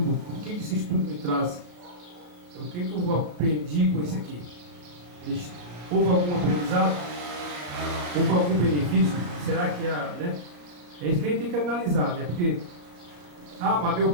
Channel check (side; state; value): left; late; 34 ms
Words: estudo me traz, o que eu aprendi com isso aqui. Houve algum aprendizado? Houve algum benefício? Será que né? É isso que a gente tem que analisar, né? Porque mas meu